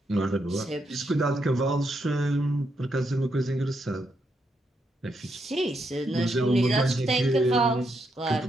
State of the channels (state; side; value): normal; both; correlation 0.80